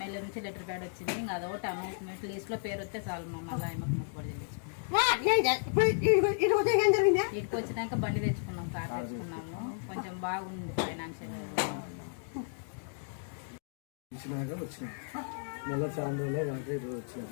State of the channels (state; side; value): silent; right; digital silence